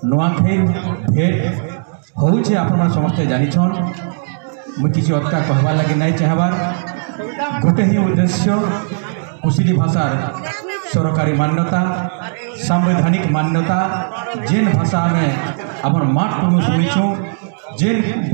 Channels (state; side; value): silent; left; digital silence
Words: नुआखाई भेट होउछे आपन समस्ते जानिछन। मुझे किसी अटका कहवा लगे नहीं चाहबार गोटे ही उद्देश्य कुशली भाषार सरकारी मान्यता संवैधानिक मान्यता जेन भाषा में आमर माट टनु शुणीछू जेन